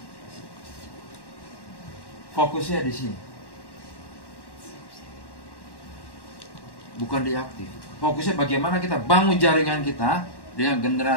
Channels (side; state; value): right; late; 1.1 ms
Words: fokusnya di sini. Bukan di aktif. Fokusnya bagaimana kita bangun jaringan kita dengan